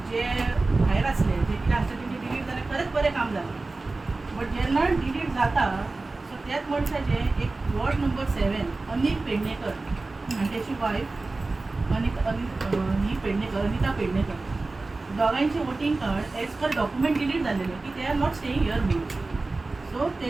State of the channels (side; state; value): left; quieter; 3.4 dB